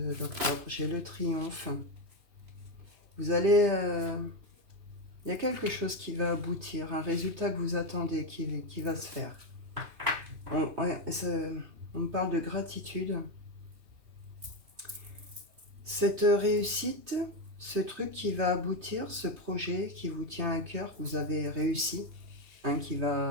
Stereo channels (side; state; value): left; late; 3.2 ms